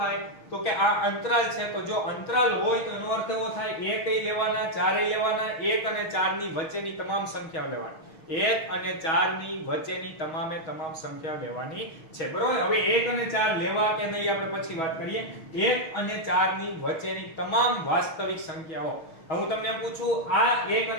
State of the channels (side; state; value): right; late; 6.3 ms